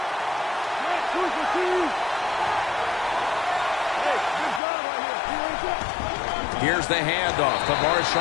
Here's the handoff to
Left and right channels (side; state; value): right; drops out; at 4.6 s